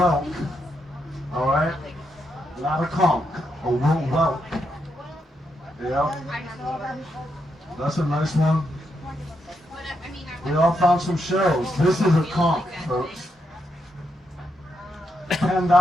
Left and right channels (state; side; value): normal; both; correlation 0.81